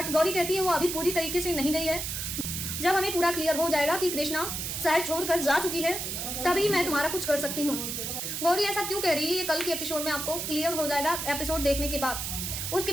गौरी कहती है वो अभी पूरी तरीके से नहीं गई है, जब हमें पूरा क्लियर हो जाएगा कि कृष्णा शहर छोड़कर जा चुकी है तभी मैं तुम्हारा कुछ कर सकती हूँ। गौरी ऐसा क्यों कह रही है ये कल के एपिसोड में आपको क्लियर हो जाएगा एपिसोड देखने के बाद। उसके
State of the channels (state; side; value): noise; right; hiss, 4 dB below the sound